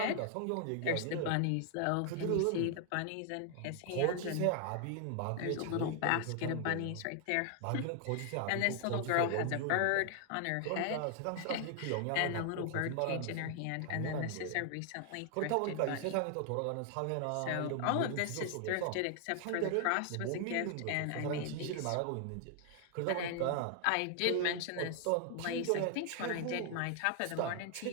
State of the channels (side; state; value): both; different; correlation 0.00